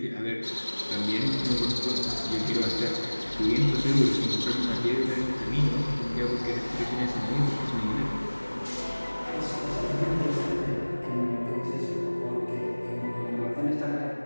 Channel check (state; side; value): inverted; both; correlation -1.00